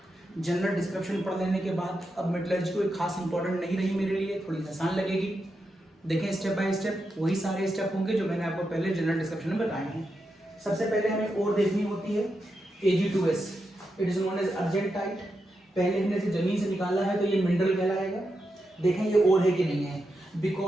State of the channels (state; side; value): normal; both; correlation 0.86